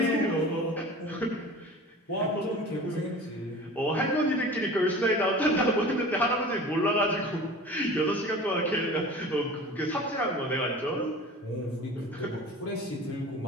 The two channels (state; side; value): normal; both; correlation 0.39